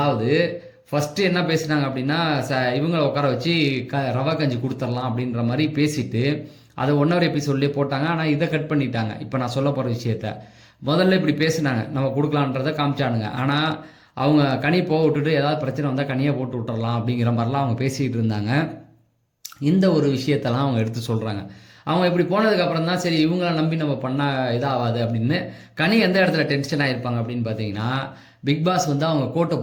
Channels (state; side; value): identical; both; correlation 1.00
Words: ஃபஸ்ட்டு என்ன பேசினாங்க அப்படின்னா, இவங்களை உட்கார வச்சு ரவா கஞ்சி கொடுத்துடலாம் அப்படின்ற மாதிரி பேசிட்டு அதை 1 hour எபிசோட்லேயே போட்டாங்க. ஆனால் இதை கட் பண்ணிட்டாங்க. இப்போ நான் சொல்ல போகிற விஷயத்த முதல்ல இப்படி பேசினாங்க, நம்ம கொடுக்கலான்றதை காமிச்சானுங்க. ஆனால் அவங்க கனி போக விட்டுட்டு ஏதாவது பிரச்சனை வந்தால் கனியை போட்டு விட்டுறலாம் அப்படிங்கிற மாதிரிலாம் அவங்க பேசிக்கிட்டு இருந்தாங்க. இந்த ஒரு விஷயத்தெல்லாம் அவங்க எடுத்து சொல்கிறாங்க. அவங்க இப்படி போனதுக்கப்புறம் தான் சரி இவங்கள நம்பி நம்ம பண்ணால் இதாகாது அப்படின்னு. கனி எந்த இடத்துல டென்ஷன் ஆகிருப்பாங்க அப்படின்னு பார்த்தீங்கன்னா, பிக் பாஸ் வந்து அவங்க கோட்டை